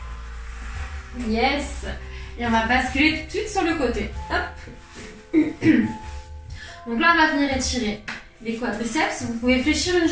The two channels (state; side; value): identical; both; correlation 1.00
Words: Yes. Et on va basculer tout de suite sur le côté. Hop. Donc là, on va venir étirer les quadriceps. Vous pouvez fléchir une